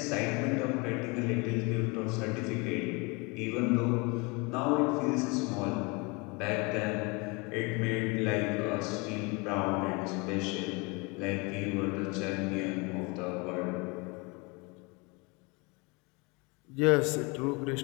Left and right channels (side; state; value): right; quieter; 28.5 dB